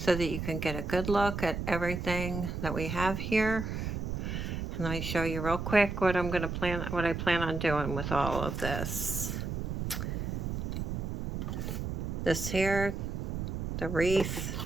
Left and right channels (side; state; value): right; noise; rumble, 3 dB below the sound